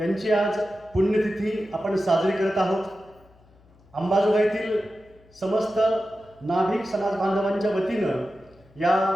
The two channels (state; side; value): noise; left; hum, 29 dB below the sound